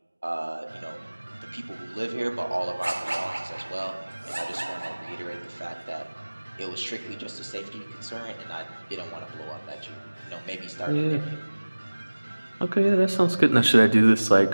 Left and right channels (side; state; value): both; inverted; correlation -1.00